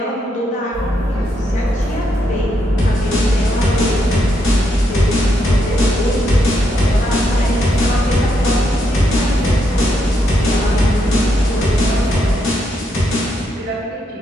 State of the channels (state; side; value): normal; both; correlation 0.79